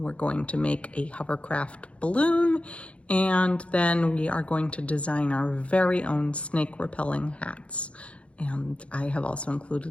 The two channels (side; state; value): right; late; 0.061 ms